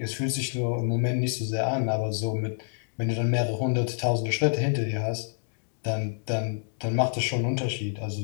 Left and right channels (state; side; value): silent; right; 60 dB below the other